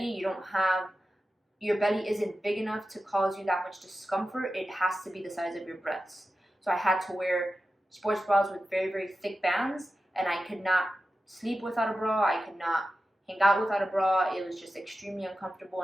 Your belly isn't big enough to cause you that much discomfort. It has to be the size of your breasts. So I had to wear sports bras with very, very thick bands, and I could not sleep without a bra. I could not hang out without a bra. It was just extremely uncomfortable,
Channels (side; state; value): both; normal; correlation 0.92